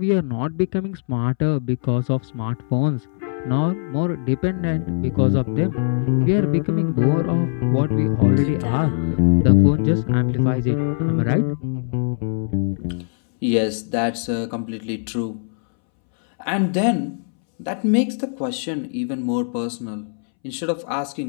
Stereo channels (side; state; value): right; silent; 65 dB below the other